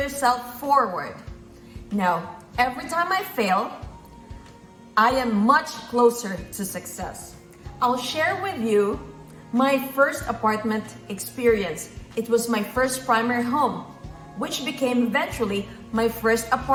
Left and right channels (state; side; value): identical; both; correlation 1.00